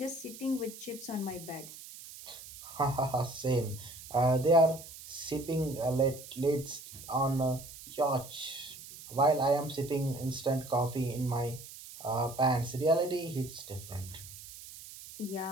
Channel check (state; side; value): noise; right; hiss, 15 dB below the sound